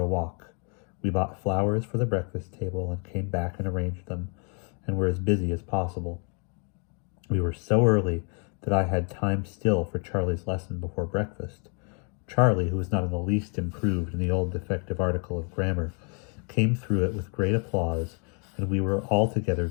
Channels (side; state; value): right; quieter; 38.2 dB